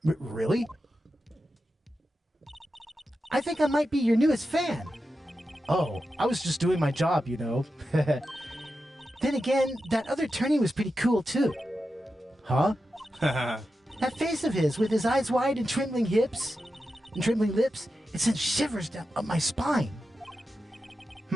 Really? I think I might be your newest fan. Oh, I was just doing my job, you know. Then again, that other attorney was pretty cool, too. Huh? That face of his, with his eyes wide and trembling hips and trembling lips, it sent shivers down up my spine.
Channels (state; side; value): normal; both; correlation 0.90